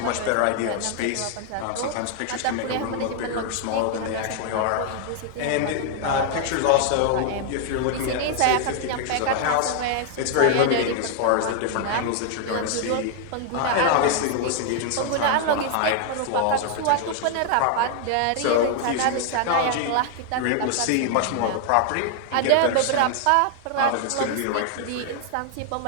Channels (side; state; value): both; different; correlation 0.00